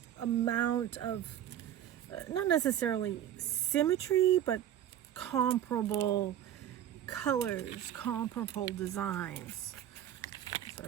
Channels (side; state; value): left; quieter; 11.0 dB